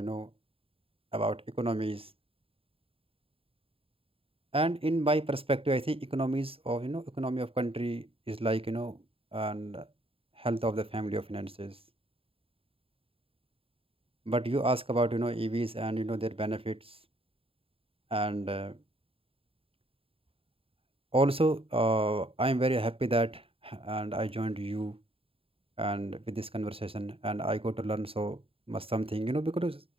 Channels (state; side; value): late; left; 0.27 ms